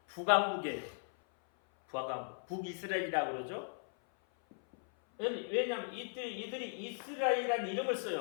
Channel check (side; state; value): right; silent; 53 dB below the other